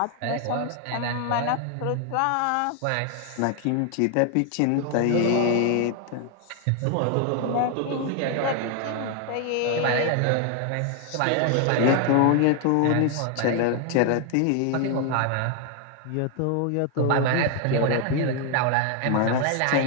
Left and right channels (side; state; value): both; different; correlation 0.01